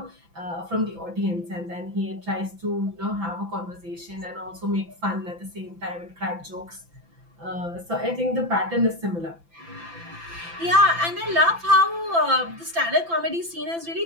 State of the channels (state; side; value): late; left; 5.9 ms